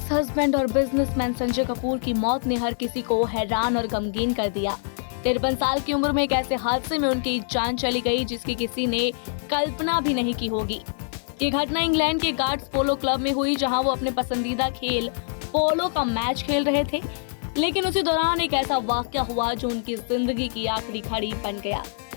husband और businessman Sanjay Kapoor की मौत ने हर किसी को हैरान और गमगीन कर दिया। 53 साल की उम्र में एक ऐसे हादसे में उनकी जान चली गई जिसकी किसी ने कल्पना भी नहीं की होगी। ये घटना इंग्लैंड के गार्ड्स पोलो क्लब में हुई, जहां वो अपने पसंदीदा खेल पोलो का मैच खेल रहे थे। लेकिन उसी दौरान एक ऐसा वाकया हुआ जो उनकी जिंदगी की आखिरी घड़ी बन गया।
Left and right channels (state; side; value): silent; right; digital silence